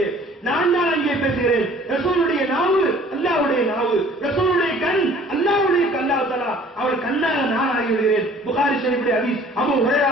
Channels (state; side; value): normal; both; correlation 0.52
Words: நான் தான் அங்கே பேசுகிறேன். ரசூலுடைய நாவு அல்லாஹ்வுடைய நாவு, ரசூலுடைய கண் அல்லாஹ்வுடைய அல்லாஹ் தஆலா அவர் கண்ணாக நான் ஆகிவிடுகிறேன். புகாரி ஷரீஃபிலே ஹதீஸ், அபூ ஹுரைரா